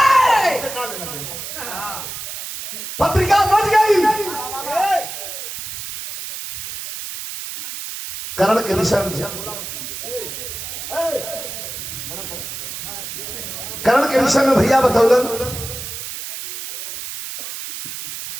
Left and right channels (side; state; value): right; noise; hiss, 8 dB below the sound